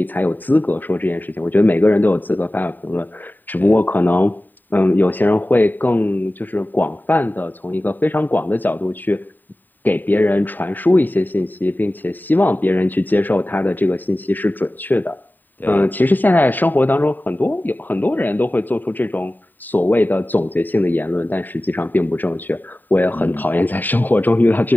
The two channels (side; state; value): right; late; 0.089 ms